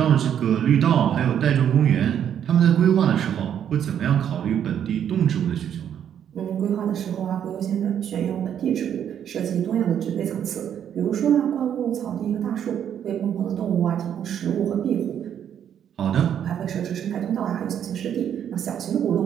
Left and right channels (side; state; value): left; quieter; 9.3 dB